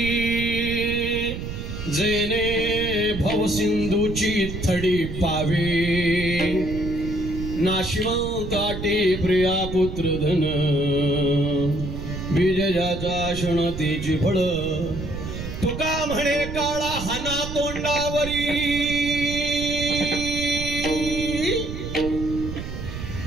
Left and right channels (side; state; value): right; noise; rumble, 7 dB below the sound